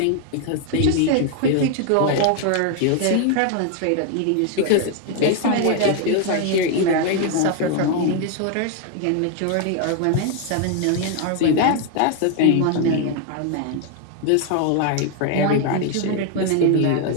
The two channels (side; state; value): both; different; correlation 0.01